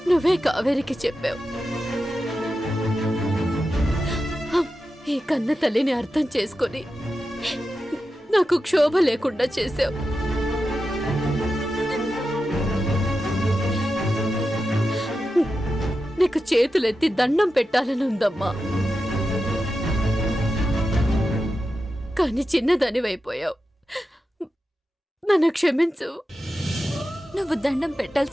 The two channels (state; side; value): normal; both; correlation 0.91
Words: నువ్వే కావేరికి చెప్పావు. ఈ కన్న తల్లిని అర్థం చేసుకొని నాకు క్షోభ లేకుండా చేశావు. నీకు చేతులెత్తి దండం పెట్టాలని ఉందమ్మా, కానీ చిన్నదానివైపోయావు. నన్ను క్షమించు. నువ్వు దండం